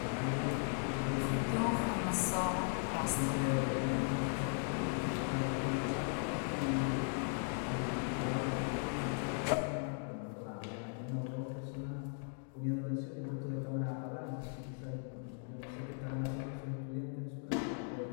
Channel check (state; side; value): silent; right; 53 dB below the other